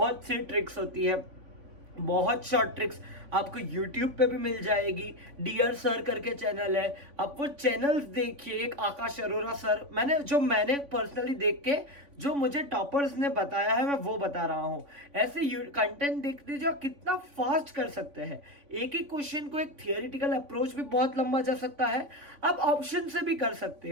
सी ट्रिक्स होती है, बहुत शॉर्ट ट्रिक्स आपको YouTube पे भी मिल जाएगी। डियर सर करके चैनल है, आप वो चैनल्स देखिए। एक आकाश अरोरा सर, मैंने पर्सनली देख के जो मुझे टॉपर्स ने बताया है मैं वो बता रहा हूँ। ऐसे कंटेंट देख लीजिए, आप कितना फास्ट कर सकते हैं। एक ही क्वेश्चन को एक थियोरिटिकल अप्रोच भी बहुत लंबा जा सकता है, आप ऑप्शन से भी कर सकते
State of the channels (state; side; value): late; left; 3.5 ms